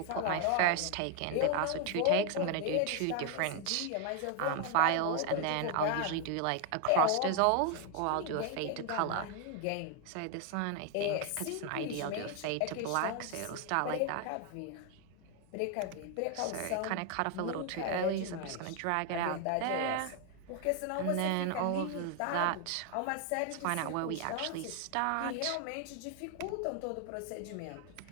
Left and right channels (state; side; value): different; both; correlation 0.01